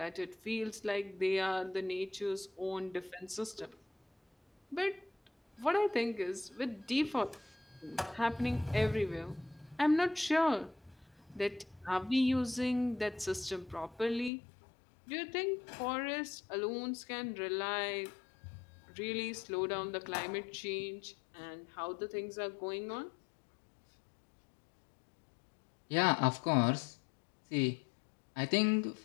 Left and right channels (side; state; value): right; drops out; at 14.3 s